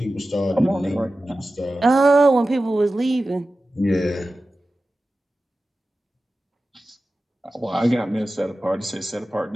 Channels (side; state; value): both; normal; correlation 0.95